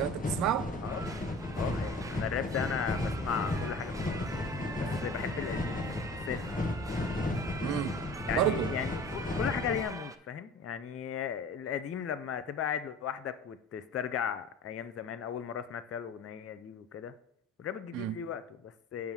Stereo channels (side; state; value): both; normal; correlation 0.42